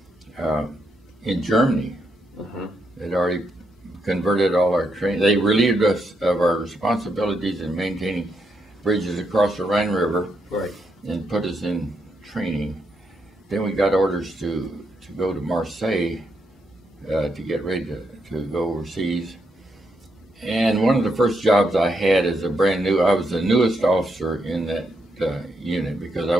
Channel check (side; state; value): both; normal; correlation 0.80